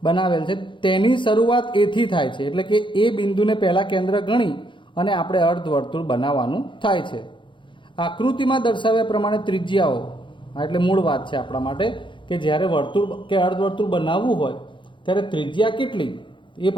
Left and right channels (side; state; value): right; late; 0.24 ms